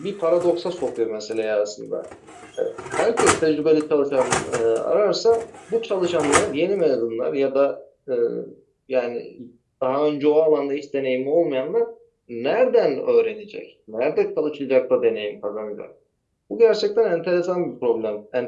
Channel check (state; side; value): identical; both; correlation 1.00